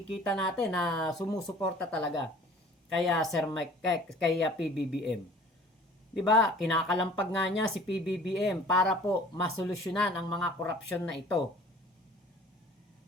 natin na sumusuporta talaga kaya Sir Mike, kaya PBBM. 'Di ba? Kinakalampag nga niya si PBBM para po masolusyonan ang mga korupsyon na ito.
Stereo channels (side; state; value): both; normal; correlation 0.49